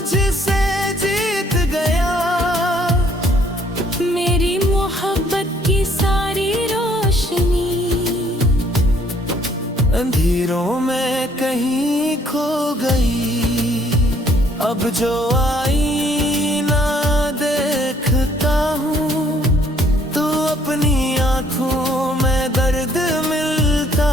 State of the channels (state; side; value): normal; both; correlation 0.64